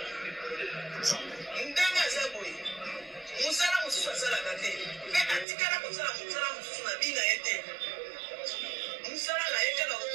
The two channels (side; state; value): left; drops out; at 5.5 s